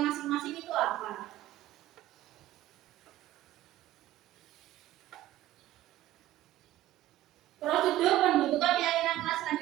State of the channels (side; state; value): left; quieter; 14.6 dB